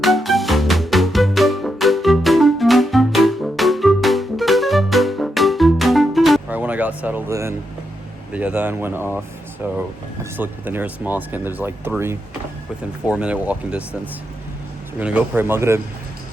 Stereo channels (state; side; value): normal; both; correlation 0.83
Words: When I got settled in, the adhan went off, so I just looked at the nearest mosque and there's like 3 within 4-minute walking distance. So we're gonna go pray Maghrib